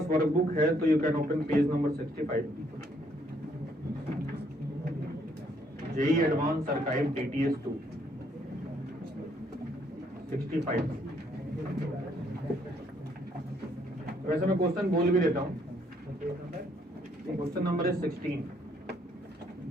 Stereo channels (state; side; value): normal; both; correlation 0.68